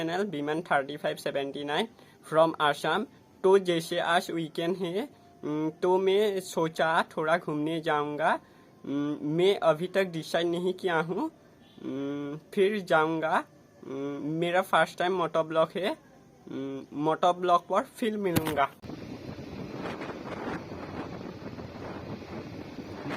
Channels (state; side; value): identical; both; correlation 1.00